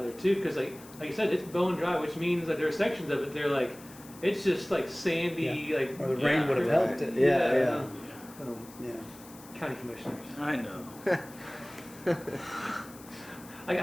there too, because like you said, it's bone dry, which means that there are sections of it they're like, it's just like sandy, like Or the rain would have right. helped it. Yeah. Yeah. County commissioners. I know.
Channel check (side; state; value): left; noise; hiss, 20 dB below the sound